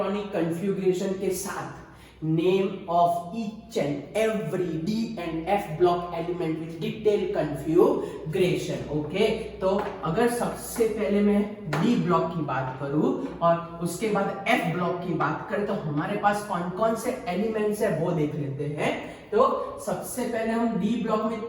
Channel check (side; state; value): both; identical; correlation 1.00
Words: कन्फ्यूग्रेशन के साथ name of each and every D and F block element with detailed configuration। Okay, तो अगर सबसे पहले मैं D ब्लॉक की बात करूं और उसके बाद F ब्लॉक की बात करें तो हमारे पास कौन कौन से एलिमेंट्स है वो देख लेते हैं। तो सबसे पहले हम D ब्लॉक में